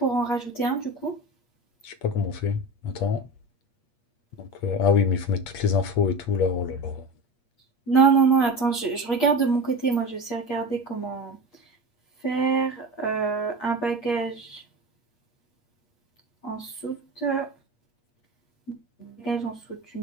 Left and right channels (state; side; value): late; right; 8.5 ms